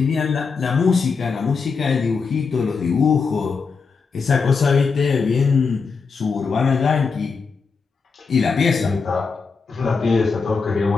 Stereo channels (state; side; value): quieter; right; 5.0 dB